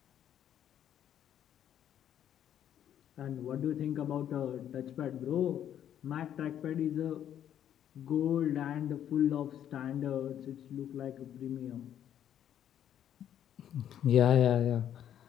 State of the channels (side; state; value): right; quieter; 10.2 dB